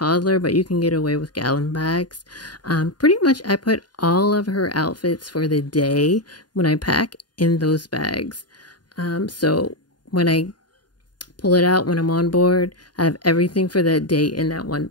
but you can get away with gallon bags. Pretty much I put all of her outfits for the day when I pack in those bags. So when I pull it out when I'm on board, I have everything for that day in that one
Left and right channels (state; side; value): late; right; 0.70 ms